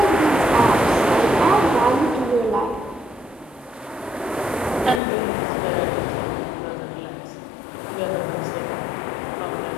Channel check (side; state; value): right; drops out; at 5.0 s